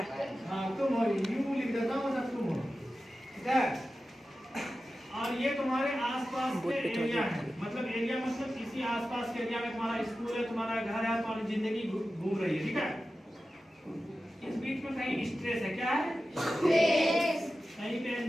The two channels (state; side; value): normal; both; correlation 0.93